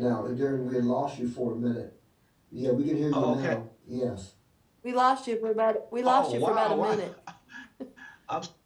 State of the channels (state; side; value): identical; both; correlation 1.00